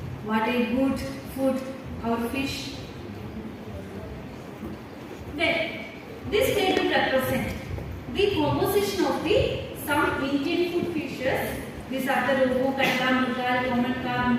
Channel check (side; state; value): both; identical; correlation 1.00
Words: What a good food our fish. Then, this table represents the composition of the some Indian food fishes. These are the rohu, katla, murgal, common carp,